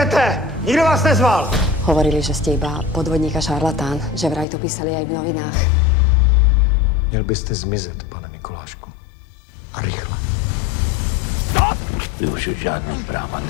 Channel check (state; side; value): drops out; right; at 4.5 s